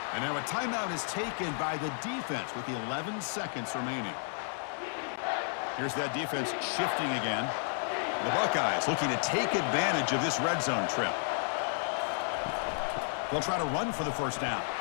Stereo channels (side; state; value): right; silent; 56 dB below the other